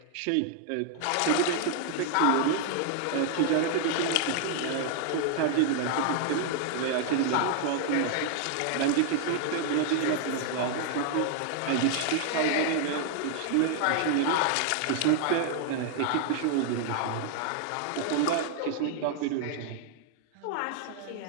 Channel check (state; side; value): different; both; correlation 0.00